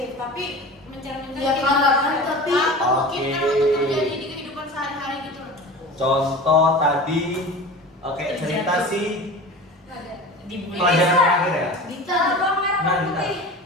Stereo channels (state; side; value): normal; both; correlation 0.35